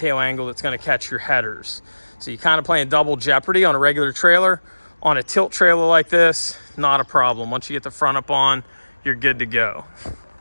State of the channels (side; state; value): both; inverted; correlation -1.00